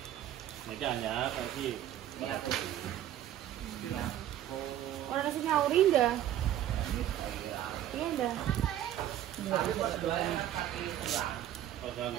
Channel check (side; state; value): left; quieter; 12.0 dB